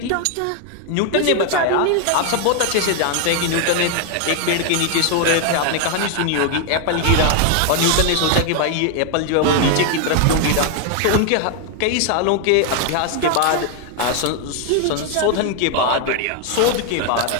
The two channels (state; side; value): different; both; correlation 0.00